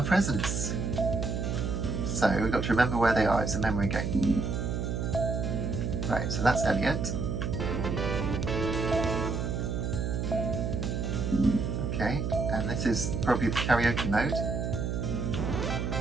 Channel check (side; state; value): right; noise; hum, 1 dB below the sound